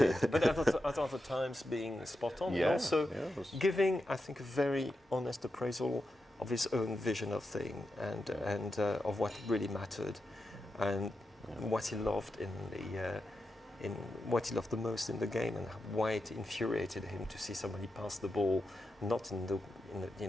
but at other times being spot on, and also giving, I think, a very honest appraisal of his own vision of thing and of what really mattered, and what he loved in what he loved the most in the game, and why it infuriated him to see somebody pass the ball not in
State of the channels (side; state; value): both; normal; correlation 0.88